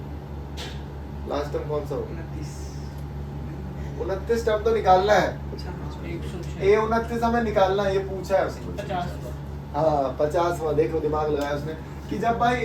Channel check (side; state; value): both; identical; correlation 1.00